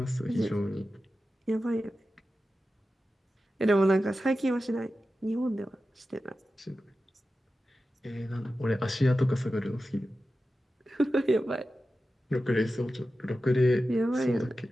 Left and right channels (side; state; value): both; normal; correlation 0.93